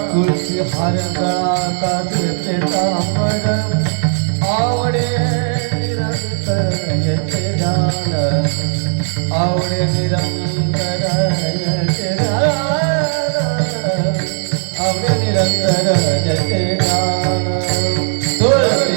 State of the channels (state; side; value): silent; left; digital silence